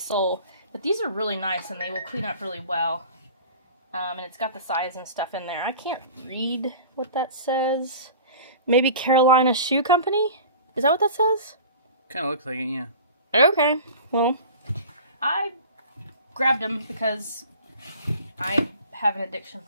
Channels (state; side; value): inverted; both; correlation -0.40